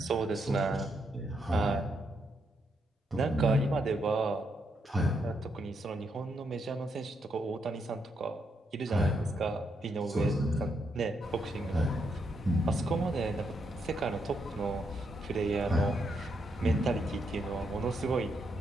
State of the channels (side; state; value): both; normal; correlation 0.79